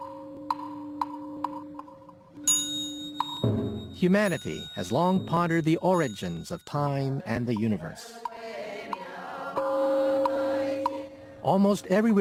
Humanity has long pondered the origins of time and the universe. Almost every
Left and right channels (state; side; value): identical; both; correlation 1.00